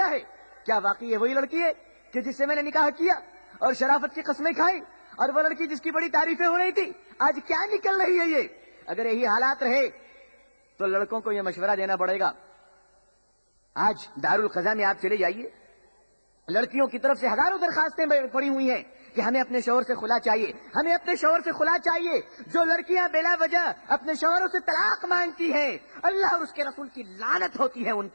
ہے۔ کیا واقعی یہ وہی لڑکی ہے کہ جس سے میں نے نکاح کیا اور شرافت کی قسمیں کھائی، اور وہ لڑکی جس کی بڑی تعریفیں ہو رہی تھی آج کیا نکل رہی ہے یہ؟ اگر یہی حالات رہے تو لڑکوں کو یہ مشورہ دینا پڑے گا۔ آج دارالقضا میں آپ چلے جائیے، لڑکیوں کی طرف سے ہزاروں درخواستیں پڑی ہوئی ہیں کہ ہمیں اپنے شوہر سے خلا چاہیے، ہمیں اپنے شوہر سے خلا چاہیے۔ جو لڑکیاں بلا وجہ اپنے شوہروں سے طلاق مانگتی ہیں، اللہ اور اس کے رسول کی لعنت ہوتی ہے ان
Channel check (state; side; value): inverted; both; correlation -1.00